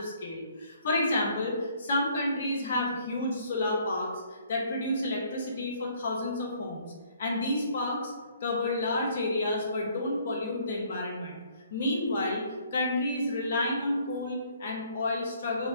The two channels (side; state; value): both; inverted; correlation -0.62